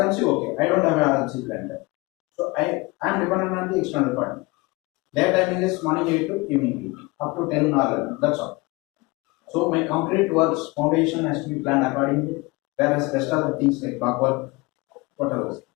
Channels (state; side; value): quieter; right; 24.3 dB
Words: okay. I don't have an RMC plan there. So I am dependent on the external partner. Their timing is morning 8 to evening 8, up to 10 or 11. That's all. So my concrete works foundation has to be planned accordingly. Whereas rest of the things like back work, whatever.